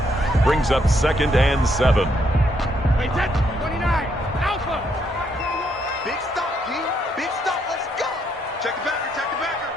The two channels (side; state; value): both; normal; correlation 0.73